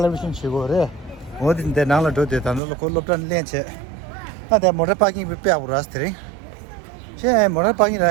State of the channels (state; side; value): drops out; left; at 2.6 s